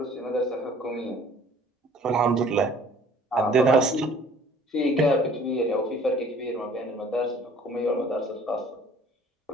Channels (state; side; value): normal; both; correlation 0.53